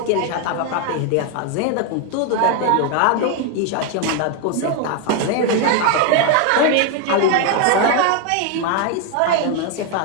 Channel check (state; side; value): different; both; correlation 0.01